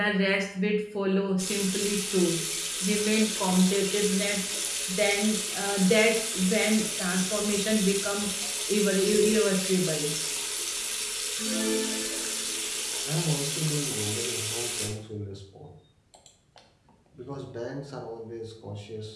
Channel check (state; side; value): identical; both; correlation 1.00